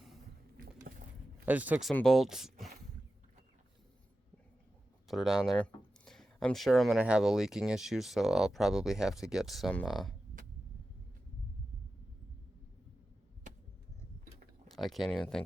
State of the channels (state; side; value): normal; both; correlation 0.93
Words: I just took some bolts. Put her down there. I'm sure I'm going to have a leaking issue, so I'll probably have to get some I can't even